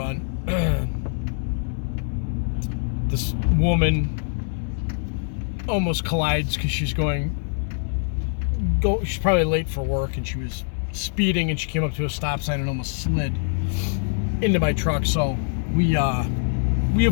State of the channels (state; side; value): silent; right; 63 dB below the other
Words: This woman almost collides because she's probably late for work, and she was speeding, and she came up to a stop sign and almost slid into my truck. So we